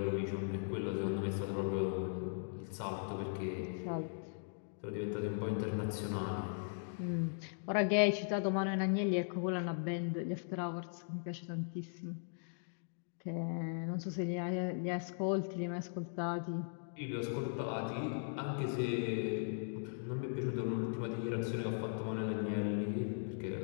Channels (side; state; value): right; silent; digital silence